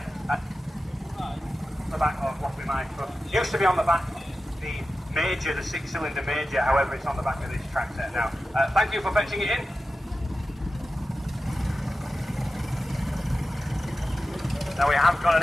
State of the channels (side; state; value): both; normal; correlation 0.93